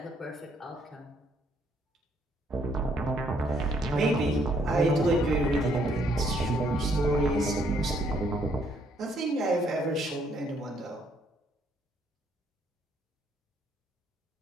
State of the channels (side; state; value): both; normal; correlation 0.68